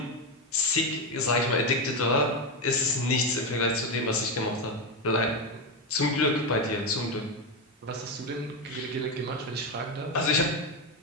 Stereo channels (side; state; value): both; normal; correlation 0.11